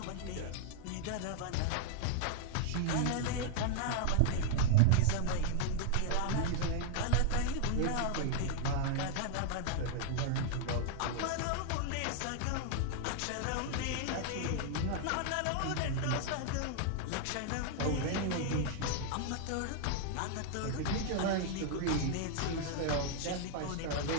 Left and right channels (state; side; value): different; both; correlation -0.01